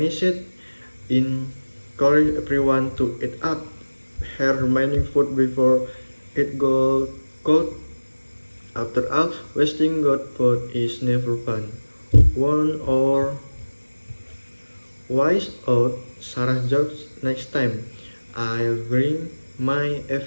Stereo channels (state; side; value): inverted; both; correlation -1.00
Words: it? Encourage everyone to eat up her remaining food before it goes cold. After all, wasting good food is never fun. One or wise out, Sarah jokes next time. I'll bring my